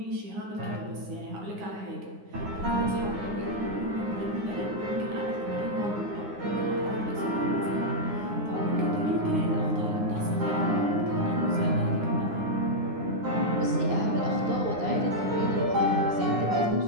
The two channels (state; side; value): late; left; 9.7 ms